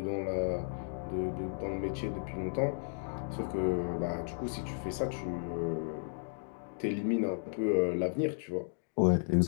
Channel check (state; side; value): silent; right; digital silence